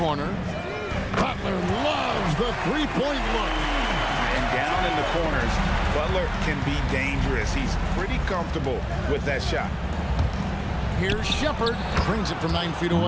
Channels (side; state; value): both; identical; correlation 1.00